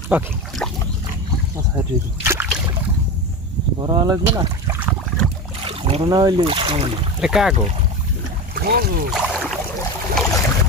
ওকে, বড় লাগবে না, বড় না হইলে এটা কাগো।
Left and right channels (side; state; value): both; normal; correlation 0.23